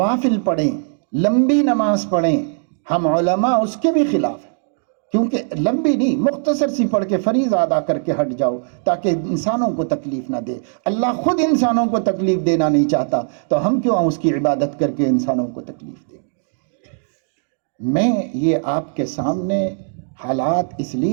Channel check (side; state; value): left; silent; digital silence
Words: پڑھیں، لمبی نماز پڑھیں، ہم علماء اس کے بھی خلاف ہیں، کیونکہ لمبی نہیں، مختصر سی پڑھ کے فریضہ ادا کر کے ہٹ جاؤ تاکہ انسانوں کو تکلیف نہ دے۔ اللہ خود انسانوں کو تکلیف دینا نہیں چاہتا، تو ہم کیوں اس کی عبادت کر کے انسانوں کو تکلیف دیں؟ میں یہ آپ کے سامنے حالات اس